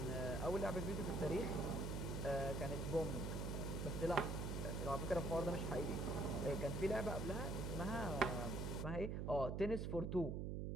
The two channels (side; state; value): right; noise; hum, 1 dB below the sound